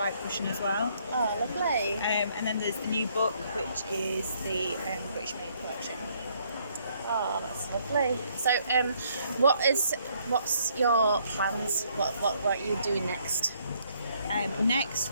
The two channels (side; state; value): both; inverted; correlation -0.68